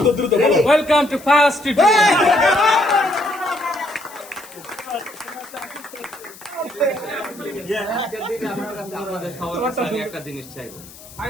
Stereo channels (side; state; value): left; noise; hiss, 19 dB below the sound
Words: ওয়েলকাম টু ফাস্ট আপনাদের সবার কাছে আমি একটা জিনিস চাইবো।